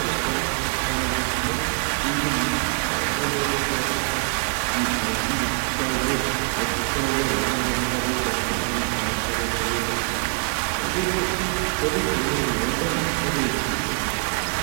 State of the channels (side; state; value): left; quieter; 37.6 dB